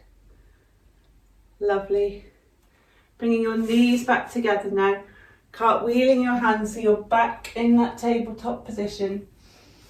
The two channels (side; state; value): both; identical; correlation 1.00